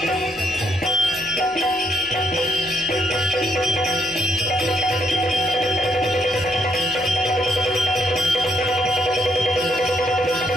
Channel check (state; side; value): normal; both; correlation 0.73